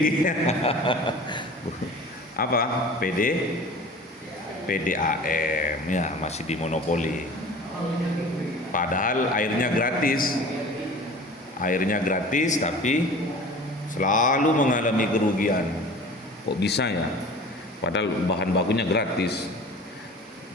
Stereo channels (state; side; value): normal; both; correlation 0.41